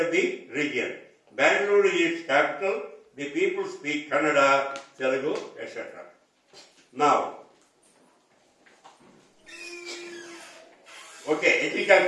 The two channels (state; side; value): identical; both; correlation 1.00